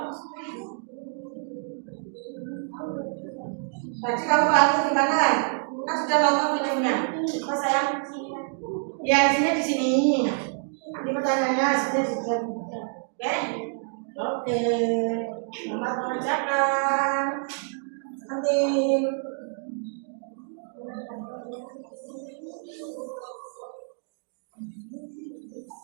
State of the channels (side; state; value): left; silent; 59 dB below the other